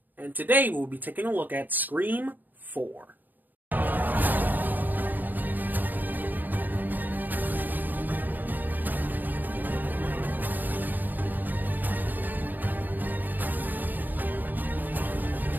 And today we'll be taking a look at Scream 4.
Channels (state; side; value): late; left; 0.088 ms